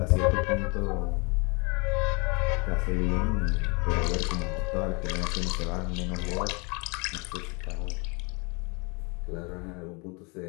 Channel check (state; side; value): quieter; right; 30.7 dB